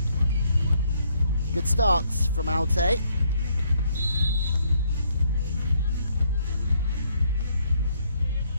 Good starts from Altay.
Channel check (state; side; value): inverted; both; correlation -0.70